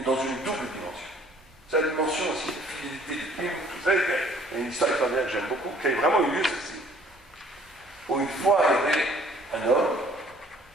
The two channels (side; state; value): both; normal; correlation 0.57